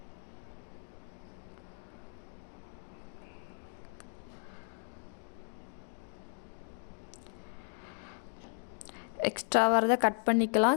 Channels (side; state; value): right; silent; 54 dB below the other